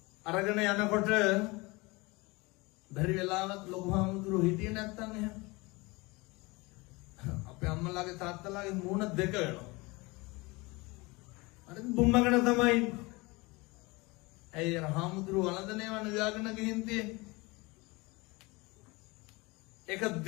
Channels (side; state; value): right; quieter; 24.5 dB